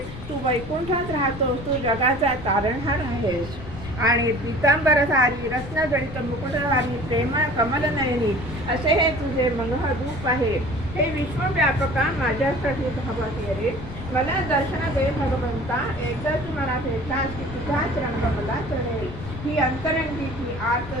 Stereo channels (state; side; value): noise; left; rumble, 12 dB below the sound